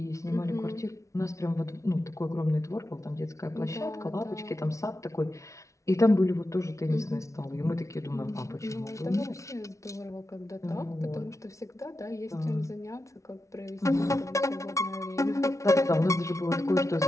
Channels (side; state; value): right; late; 0.14 ms